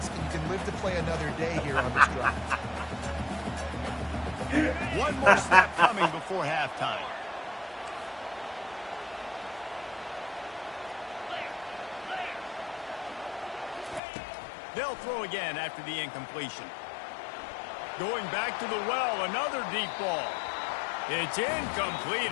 and you can live to play another day here on this drive. One more snap coming before halftime. They'll throw again after the incompletion. Going back to the well, another deep ball. It's incomplete,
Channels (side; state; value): right; drops out; at 14.0 s